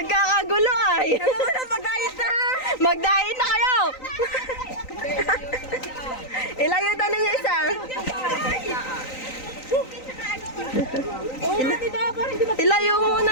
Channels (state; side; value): late; right; 3.9 ms